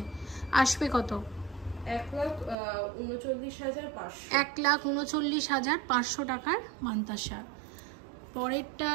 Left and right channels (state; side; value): drops out; left; at 2.6 s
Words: আসবে কত? 1,39,500 টাকার মান্তাসা।